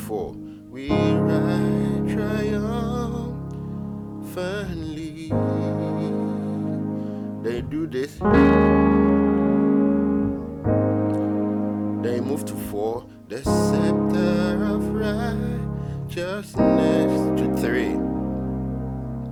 We ride triumphantly. They do this. They move to 4. The scepter of righteousness to 3.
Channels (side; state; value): both; identical; correlation 1.00